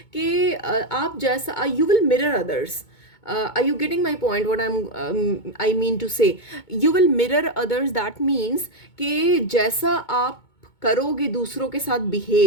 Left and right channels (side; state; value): right; late; 2.2 ms